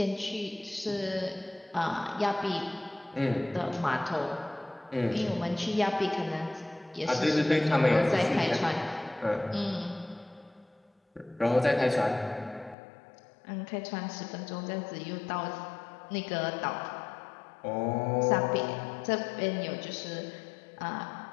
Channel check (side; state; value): right; drops out; at 12.8 s